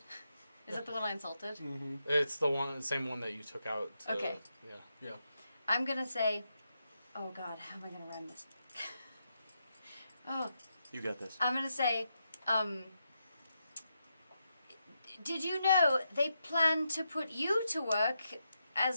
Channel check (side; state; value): both; inverted; correlation -0.84